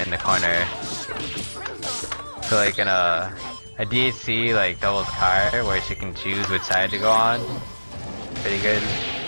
the corner. So like in a DHC like doubles car where she can choose which side to go on, pretty good.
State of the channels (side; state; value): both; inverted; correlation -1.00